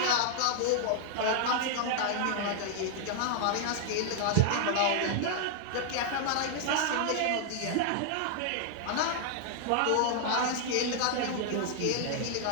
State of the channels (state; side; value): different; both; correlation -0.01